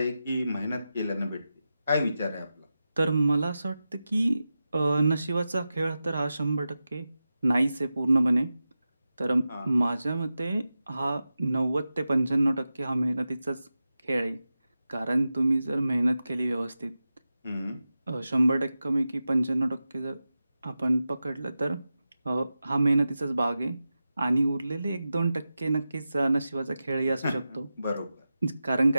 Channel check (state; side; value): inverted; both; correlation -0.93